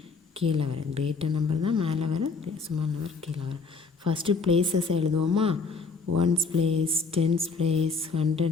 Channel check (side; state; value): right; quieter; 4.4 dB